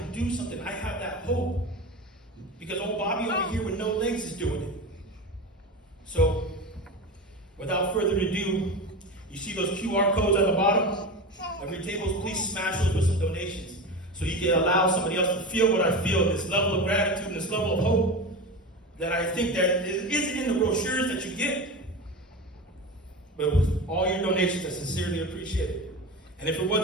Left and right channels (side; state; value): both; normal; correlation 0.26